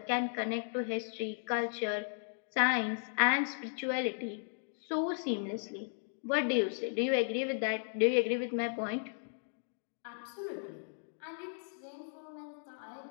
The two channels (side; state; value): right; silent; digital silence